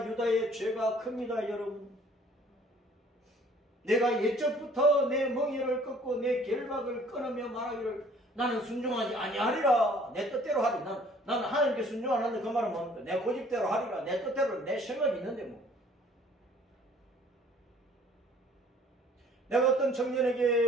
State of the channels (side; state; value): both; normal; correlation 0.55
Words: 유다의 죄가 큽니다. 여러분. 내가 예적부터 내 멍에를 꺾고 내 결박을 끊으며 말하기를 나는 순종하지 아니하리라. 내 뜻대로 하리. 나는 하나님께 순종 안 하는데 그 말은 뭡니까? 내 고집대로 하리라. 내 뜻대로 내 생각이 있는데 뭐. 내가 어떤